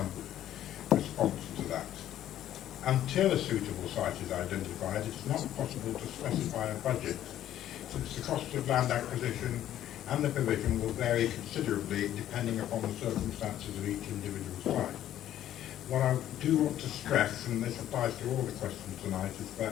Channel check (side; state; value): right; quieter; 12.0 dB